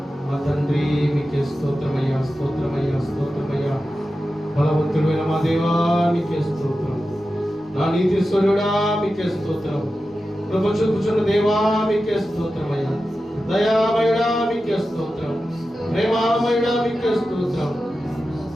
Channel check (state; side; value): normal; both; correlation 0.92